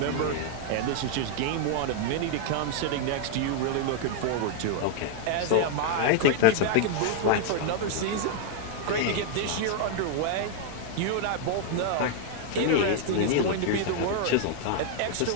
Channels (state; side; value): different; both; correlation 0.00